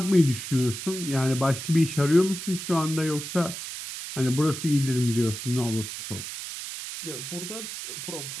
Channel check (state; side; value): noise; right; hiss, 8 dB below the sound